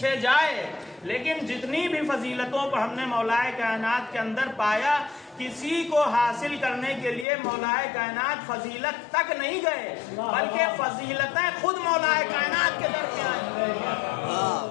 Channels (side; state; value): right; drops out; at 7.2 s